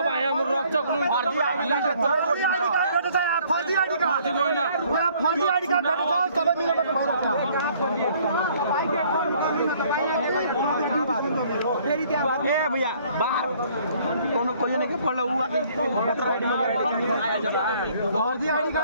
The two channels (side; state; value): both; inverted; correlation -0.60